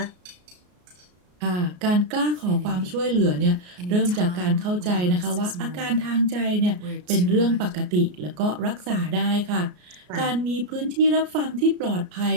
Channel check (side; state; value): left; late; 33 ms